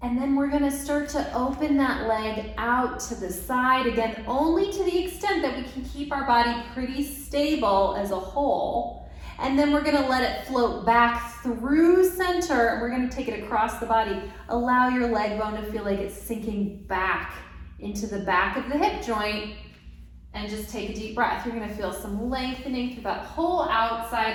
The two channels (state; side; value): identical; both; correlation 1.00